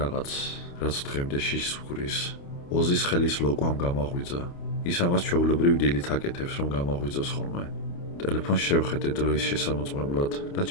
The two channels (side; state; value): right; late; 29 ms